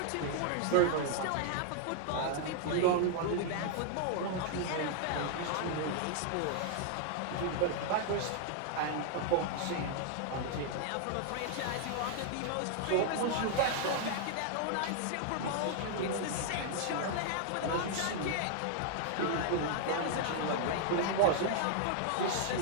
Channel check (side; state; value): both; different; correlation 0.00